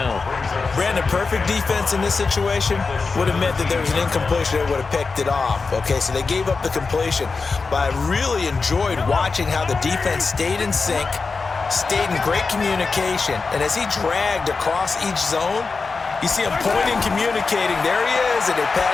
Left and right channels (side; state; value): right; quieter; 4.4 dB